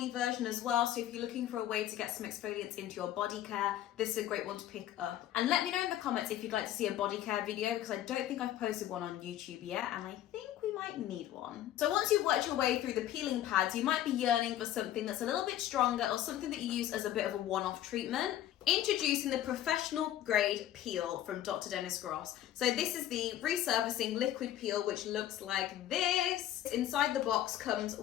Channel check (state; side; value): quieter; right; 12.3 dB